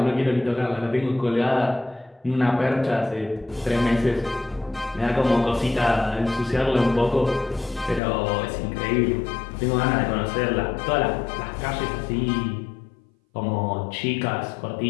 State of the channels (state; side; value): drops out; right; at 8.0 s